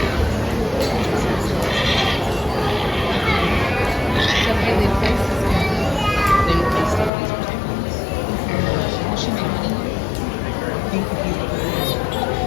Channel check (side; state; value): right; drops out; at 7.1 s